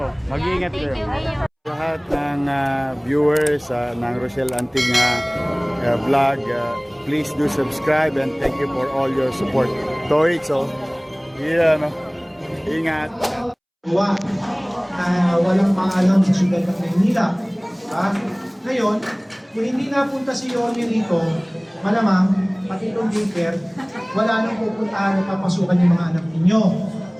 Mag-iingat kayo. Lahat ng viewers ng Rochelle Anting vlog, please do subscribe and thank you for all your support. Toitso, ingat. Walang paalam sa syudad ng Maynila. Ngayon, kung hindi napunta si Yorme rito, malamang, pati itong daycare, wala nang pupuntahan at papasukan yung mga anak ninyo.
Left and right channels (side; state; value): both; identical; correlation 1.00